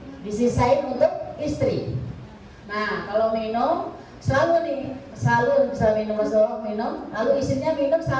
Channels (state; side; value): identical; both; correlation 1.00